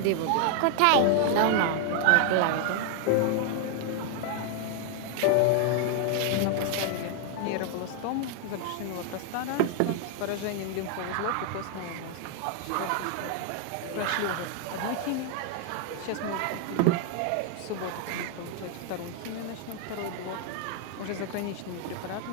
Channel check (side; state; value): both; different; correlation 0.00